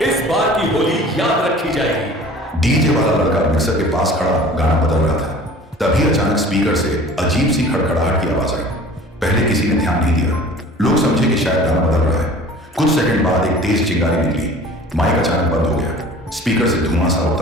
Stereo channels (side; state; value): both; normal; correlation 0.45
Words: इस बार की होली याद रखी जाएगी। डीजे वाला लड़का मिक्सर के पास खड़ा गाना बदल रहा था। तभी अचानक स्पीकर से अजीब सी खड़खड़ाहट की आवाज आई। पहले किसी ने ध्यान नहीं दिया। लोग समझे कि शायद गाना बदल रहा है। कुछ सेकंड बाद एक तेज चिंगारी निकली। माइक अचानक बंद हो गया। स्पीकर से धुआं सा